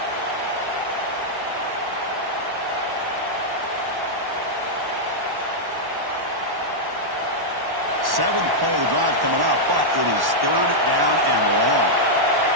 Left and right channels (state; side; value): late; left; 1.1 ms